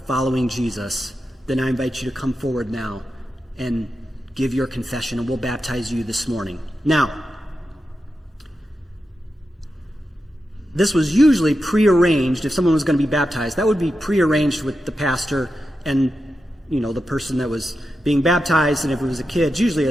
following Jesus, then I invite you to come forward now and give your confession, and we'll baptize you this morning. Now, this was usually prearranged. If someone was going to be baptized, that would be prearranged with the pastor and, the person that was being baptized. And if it was a kid, it's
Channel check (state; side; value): normal; both; correlation 0.89